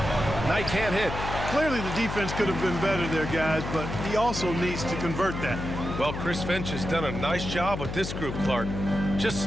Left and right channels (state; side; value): noise; left; hum, 5 dB below the sound